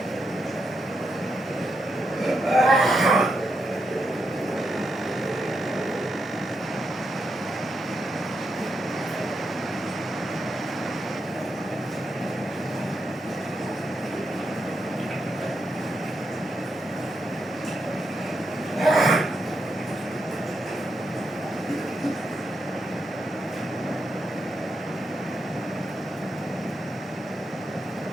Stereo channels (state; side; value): normal; both; correlation 0.83